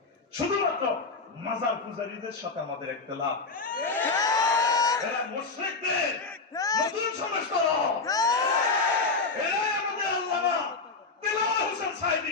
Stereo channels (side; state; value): right; quieter; 4.0 dB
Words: শুধুমাত্র মাজার পূজারীদের সাথে আমাদের ইখতিলাফ। এরা মুশরিকদের নতুন সংস্করণ। এরাই আমাদের আল্লামা দেলোয়ার হোসেন সাইদি